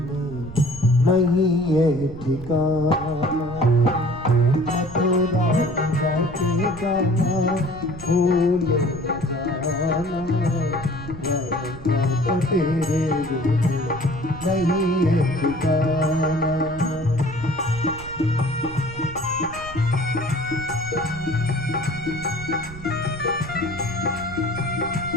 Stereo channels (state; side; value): noise; right; rumble, 14 dB below the sound